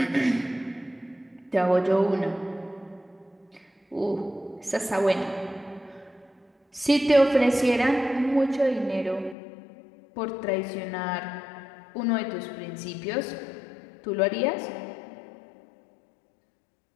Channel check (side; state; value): right; drops out; at 9.3 s